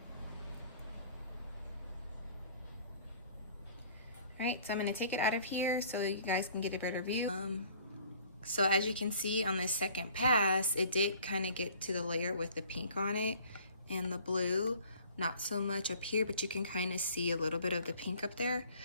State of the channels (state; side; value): inverted; both; correlation -0.53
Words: All right, so I'm gonna take it out of here so you guys can get a better view. So as you can see on this second pass, it did kind of get to the layer with the pink on it and the blue. Not so much up here, but you can kind of see a little bit of the pink up there.